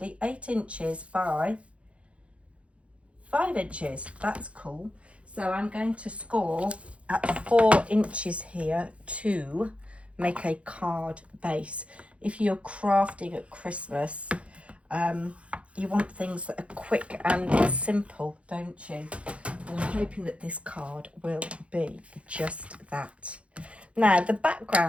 8 inches by 5 inches. That's cool. So I'm going to score at 4 inches here to make a card base. If you're crafting at Christmas, you want things that are quick and simple, don't you? And I'm hoping that this card will be just that. Now, the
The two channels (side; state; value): left; late; 0.062 ms